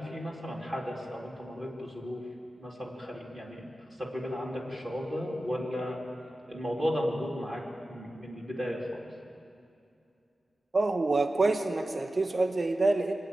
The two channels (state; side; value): normal; both; correlation 0.94